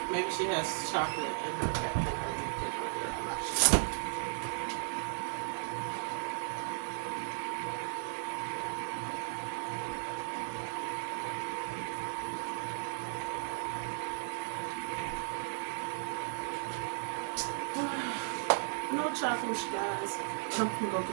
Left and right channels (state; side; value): silent; left; digital silence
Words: Maybe she has chocolate in her refrigerator. I'm not sure. No chocolate, you guys. I'm gonna go